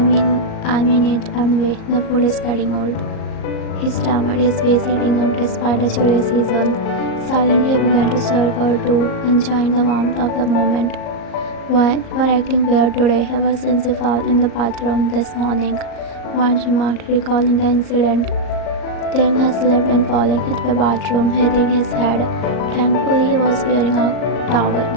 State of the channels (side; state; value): right; late; 38 ms